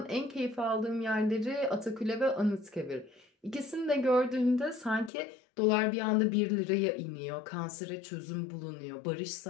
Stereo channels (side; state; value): right; drops out; at 5.1 s